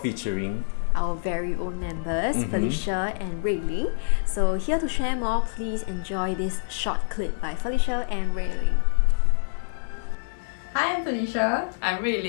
our very own members, Felicia and Rui Ling. So here to share more, please enjoy this short clip by Felicia and Rui Ling. Hi, I'm Felicia. I'm Rui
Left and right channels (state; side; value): silent; right; 61 dB below the other